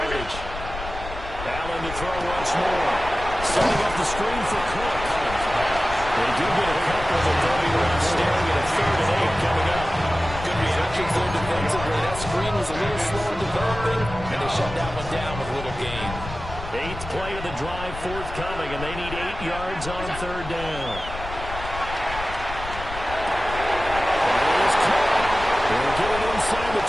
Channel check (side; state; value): left; noise; rumble, 10 dB below the sound